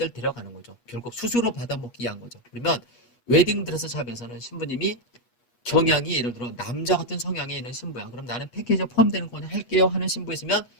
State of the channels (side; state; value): right; late; 8.3 ms